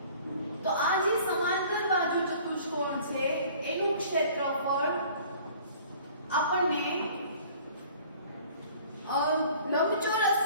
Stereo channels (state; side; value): inverted; both; correlation -0.50